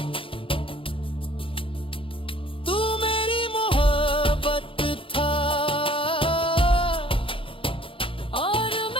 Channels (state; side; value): late; right; 0.26 ms